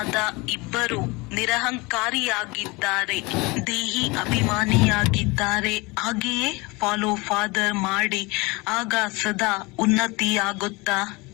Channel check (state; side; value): quieter; right; 25.2 dB